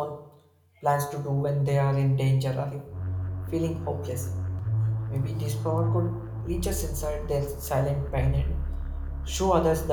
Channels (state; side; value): identical; both; correlation 1.00